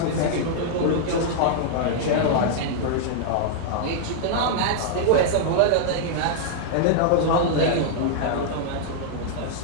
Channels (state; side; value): different; both; correlation -0.01